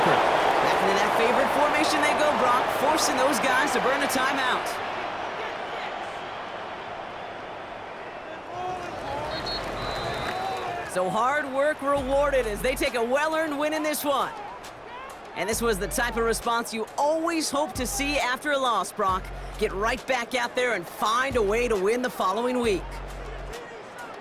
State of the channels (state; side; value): identical; both; correlation 1.00